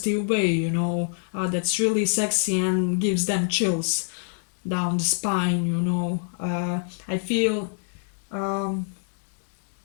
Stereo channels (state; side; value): silent; right; digital silence